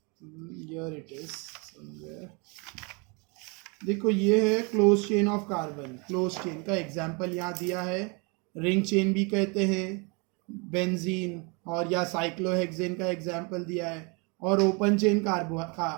here it is somewhere, देखो ये है close chain of carbon. Close chain का एग्जांपल यहाँ दिया है, रिंग चेन भी कहते हैं, बेंजीन और या साइक्लोहेक्सेन का एग्जांपल दिया है, और open chain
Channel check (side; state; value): left; quieter; 31.4 dB